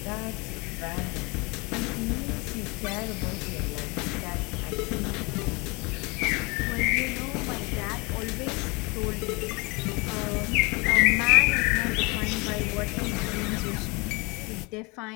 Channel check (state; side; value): quieter; right; 27.7 dB